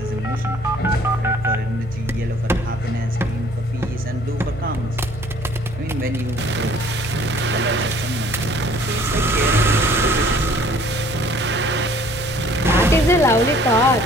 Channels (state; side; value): normal; both; correlation 0.55